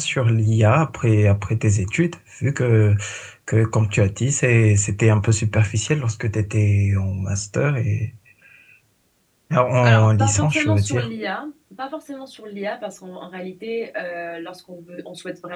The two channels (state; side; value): identical; both; correlation 1.00